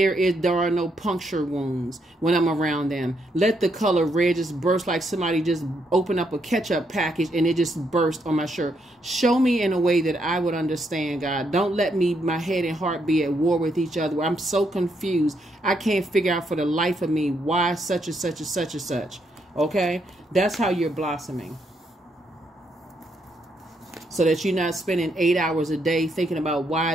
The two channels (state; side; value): normal; both; correlation 0.76